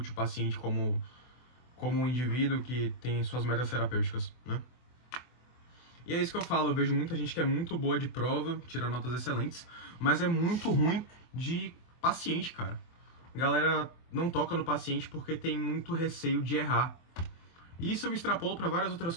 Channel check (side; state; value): right; late; 24 ms